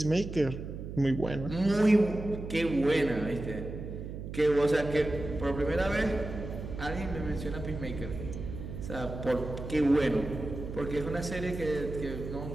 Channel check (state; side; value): noise; right; hum, 8 dB below the sound